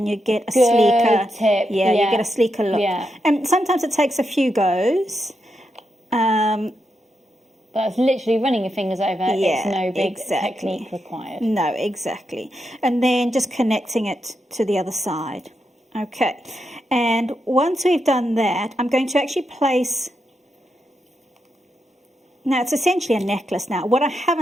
you get a sleeker tip. Yeah, you get a sleeker look. Yeah. And sometimes it takes a few goes. That's literally running your fingers over. It's no big technique required. No, exactly. And then just connecting it to the other side. Okay. And once we've done that, I'm going to actually place... Now, it's essentially a necklace now. What I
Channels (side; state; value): both; normal; correlation 0.84